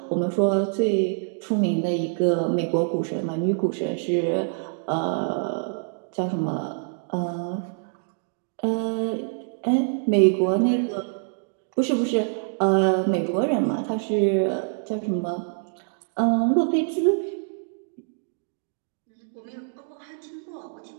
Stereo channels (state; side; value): silent; left; digital silence